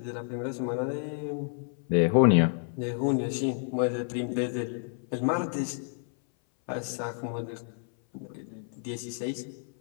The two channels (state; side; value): silent; right; 57 dB below the other